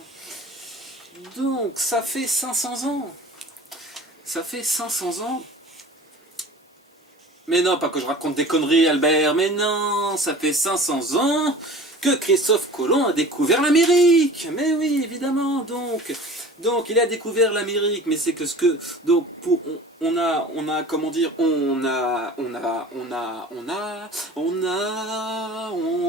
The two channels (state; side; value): normal; both; correlation 0.41